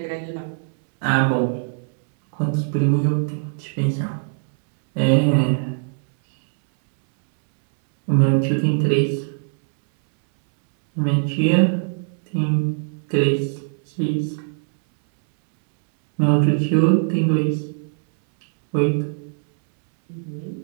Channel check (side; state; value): left; silent; 65 dB below the other